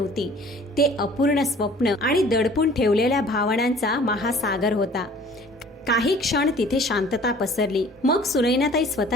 ते अपूर्ण स्वप्न आणि दडपून ठेवलेल्या भावनांचा महासागर होता. काही क्षण तिथे शांतता पसरली. मग सुनैनाताई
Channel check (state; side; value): normal; both; correlation 0.50